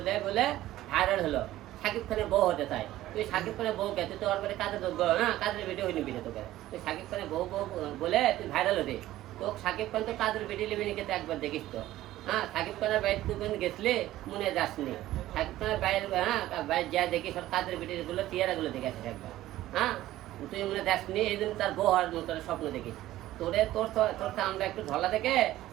বলে ভাইরাল হলো। শাকিব খানের বউ হতে চাই, তুই শাকিব খানের বউকে তুই তো ওর বাড়ি কাজের যোগ্য, হ্যাঁ কাজের বেটি হইনি বিটে তোকে, তুই শাকিব খানের বউ বউ বলে তুই ভাইরাল হতে। তো শাকিব খান তো কাজের বেটি লিবি নিকে তো একবার দেখিস তো, হ্যাঁ শাকিব খানের বাইরে তুই গেছলে মনে যাসনি। শাকিব খানের বাইরে, হ্যাঁ বাইরে যা দেখিস ওর কাজের বেটিগুলো টিয়ারাগুলো দেখে আসিস একবার, হ্যাঁ তুই মনে যাসনি। এই জন্য তার বউ হওয়ার মতো স্বপ্ন দেখিস। তোরে তোর আমরা একটু ঢলা থেকে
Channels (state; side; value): quieter; left; 14.9 dB